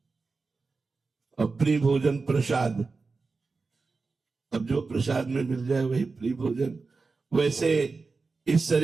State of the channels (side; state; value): left; quieter; 4.2 dB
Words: और प्रिय भोजन प्रसाद, अब जो प्रसाद में मिल जाए वही प्रिय भोजन। वैसे इस